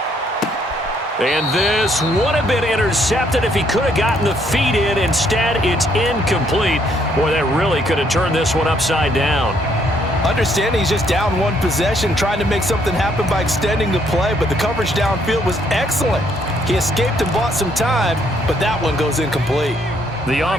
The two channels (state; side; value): normal; both; correlation 0.69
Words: And this would have been intercepted if he could have gotten the feet in. Instead, it's incomplete. Boy, that really could have turned this one upside down. Understanding he's just down one possession, trying to make something happen by extending the play, but the coverage downfield was excellent. He escaped and bought some time, but that one goes incomplete. The